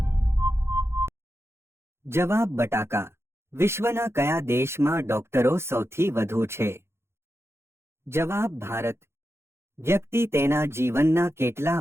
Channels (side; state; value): left; late; 0.12 ms